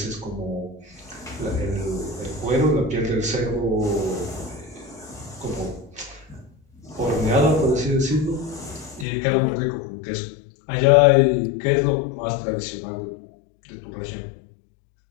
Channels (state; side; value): drops out; right; at 9.1 s